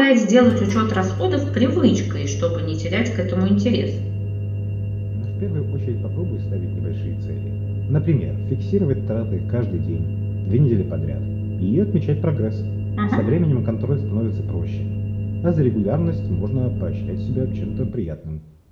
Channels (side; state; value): both; identical; correlation 1.00